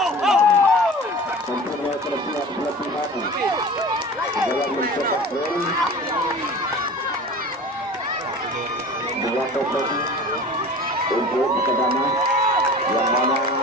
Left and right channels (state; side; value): normal; both; correlation 0.38